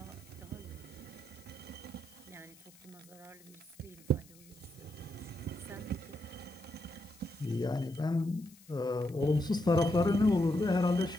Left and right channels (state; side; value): noise; left; hiss, 24 dB below the sound